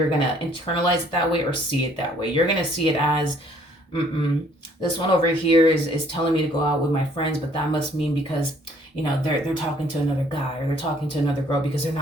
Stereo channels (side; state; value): both; normal; correlation 0.61